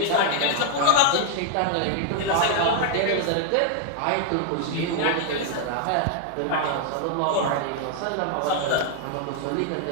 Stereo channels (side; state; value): both; different; correlation -0.01